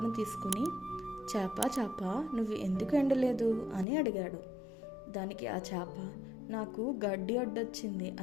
తీసుకుని, చేప నువ్వు ఎందుకు ఎండలేదు అని అడిగాడు. దానికి ఆ చేప, నాకు గడ్డి అడ్డొచ్చింది,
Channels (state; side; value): drops out; right; at 3.9 s